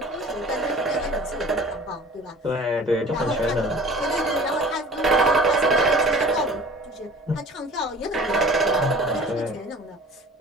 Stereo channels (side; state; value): both; normal; correlation 0.44